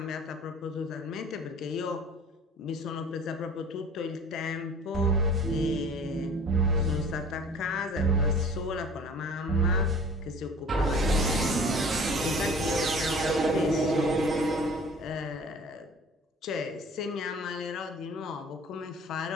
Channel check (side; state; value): both; normal; correlation 0.46